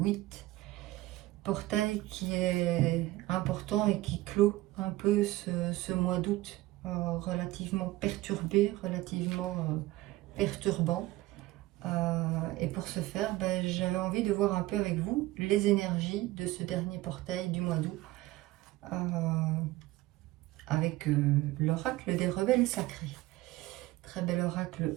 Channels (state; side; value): quieter; left; 17.9 dB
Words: Portail qui est important et qui clôt un peu ce mois d'août relativement perturbé, relativement perturbant. Et pour ce faire, j'avais envie de voir un peu avec vous les énergies de ce dernier portail du mois d'août avec l'oracle des rebelles sacrés. Très bel